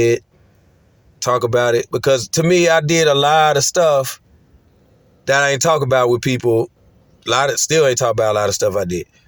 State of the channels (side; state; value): both; identical; correlation 1.00